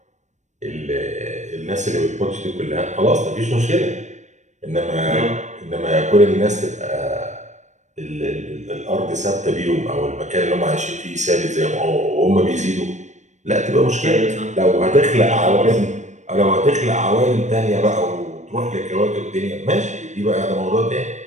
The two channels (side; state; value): left; late; 0.34 ms